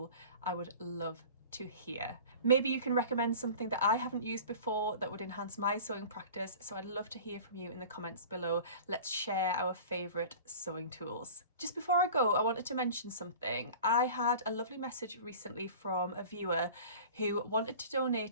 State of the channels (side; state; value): both; inverted; correlation -0.40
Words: I would love to hear. Maybe you can recommend something that I haven't used before that would enhance my sewing practice, so I'd love to hear from you in the comments below. Let's share our favourite sewing tools. Just before I go, I wanted to mention something. I had a lovely message recently from a viewer who wanted to